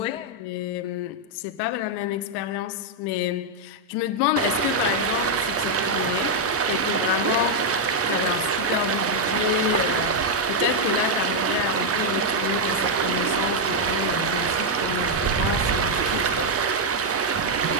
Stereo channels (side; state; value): both; normal; correlation -0.01